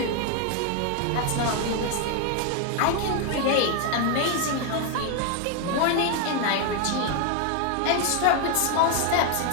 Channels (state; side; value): different; both; correlation 0.01